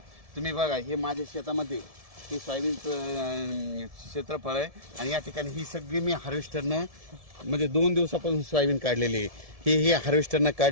तुम्ही बघा, हे माझ्या शेतामध्ये हे सोयाबीनचं क्षेत्रफळ आहे आणि या ठिकाणी ही सगळी मी हार्वेस्टरनं म्हणजे 2 दिवसापासून सोयाबीन काढलेली आहे. हे हार्वेस्टरनं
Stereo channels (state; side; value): late; left; 1.7 ms